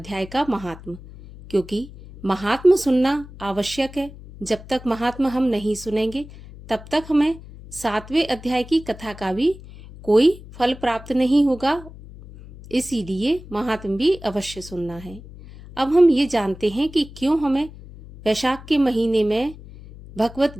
का महात्म, क्योंकि महात्म सुनना आवश्यक है। जब तक महात्म हम नहीं सुनेंगे तब तक हमें 7वें अध्याय की कथा का भी कोई फल प्राप्त नहीं होगा, इसीलिए महात्म भी अवश्य सुनना है। अब हम ये जानते हैं कि क्यों हमें वैशाख के महीने में भगवत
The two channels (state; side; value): noise; left; hum, 17 dB below the sound